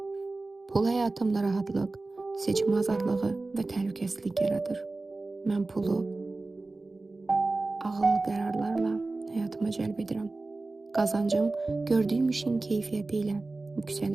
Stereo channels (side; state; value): left; quieter; 3.3 dB